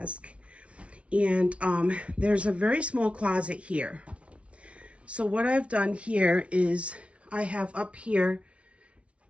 And there's a very small closet here. So what I've done here is I have up here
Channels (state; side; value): late; left; 0.062 ms